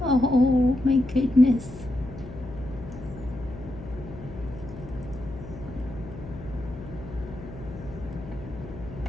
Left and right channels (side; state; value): left; noise; hum, 13 dB below the sound